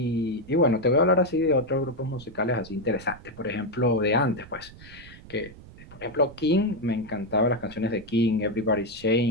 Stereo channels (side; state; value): right; noise; rumble, 19 dB below the sound